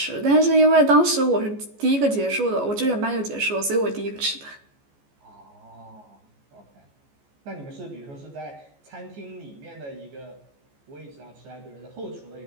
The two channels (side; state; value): left; late; 14 ms